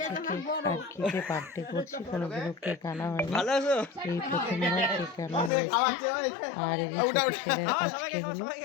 থেকে আর কি যে বার্থডে করছি কোনোদিনও কেক আনা হয়নি, ভালো আছো এই প্রথমবার কেক আনা হয়েছে। আর এই ছোট ছেলের আজকে হলো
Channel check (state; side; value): drops out; right; at 5.5 s